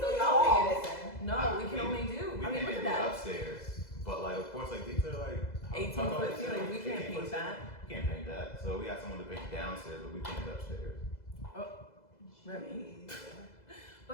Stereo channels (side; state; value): right; late; 2.0 ms